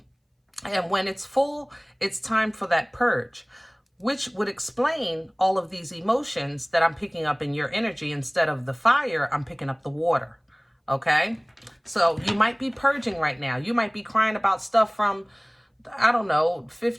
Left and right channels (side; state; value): both; identical; correlation 1.00